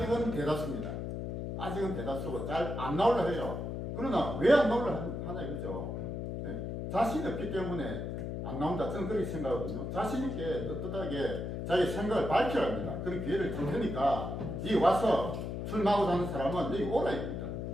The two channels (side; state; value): left; noise; hum, 4 dB below the sound